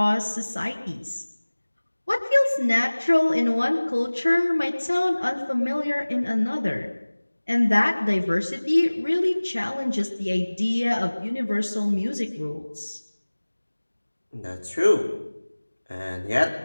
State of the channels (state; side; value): inverted; both; correlation -1.00